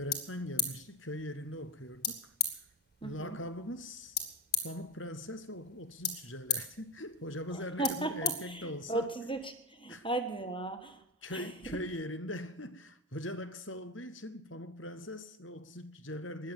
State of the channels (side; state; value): both; normal; correlation 0.16